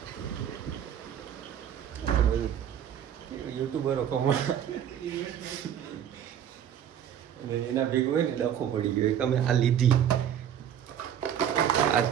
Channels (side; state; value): left; quieter; 9.4 dB